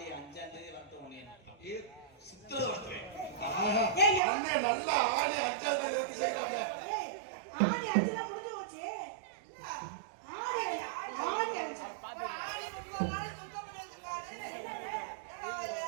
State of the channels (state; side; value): drops out; left; at 4.2 s